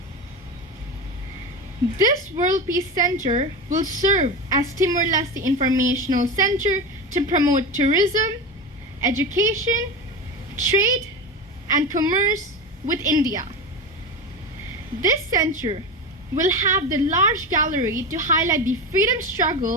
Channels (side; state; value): both; normal; correlation 0.22